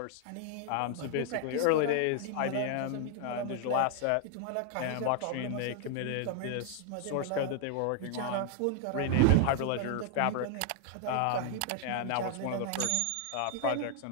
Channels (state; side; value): different; both; correlation 0.00